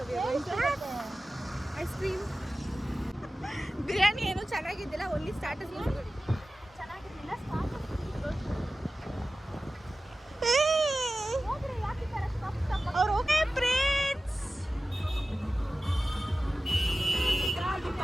ಐಸ್ ಕ್ರೀಮ್ ಬಿರಿಯಾನಿ ಏನು ಚೆನ್ನಾಗಿದ್ದಿಲ್ಲ, ಓನ್ಲಿ ಸ್ಟಾರ್ಟರ್ಸ್ ಚೆನ್ನಾಗಿರಲಿಲ್ಲ. ಅವ್ರು ಓಕೆ ಫ್ರೆಂಡ್ಸ್.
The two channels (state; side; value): normal; both; correlation 0.96